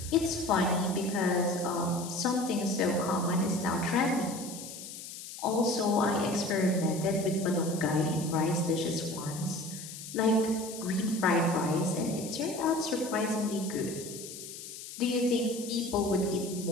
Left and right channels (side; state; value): left; noise; hiss, 11 dB below the sound